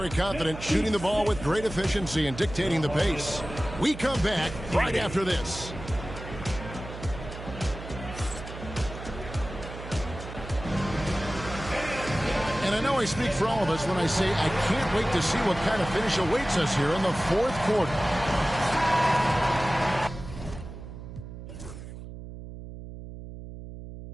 confident, shooting the ball with great efficiency and dictating the pace. We come back right after this. And I know I speak for all of us when I say I can't wait to see what kind of finish awaits us here in the fourth quarter.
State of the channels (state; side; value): noise; right; hum, 12 dB below the sound